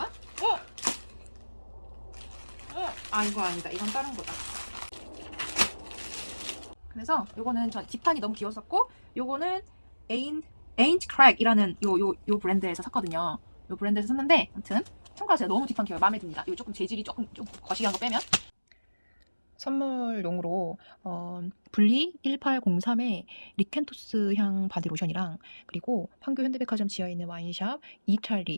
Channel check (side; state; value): both; inverted; correlation -1.00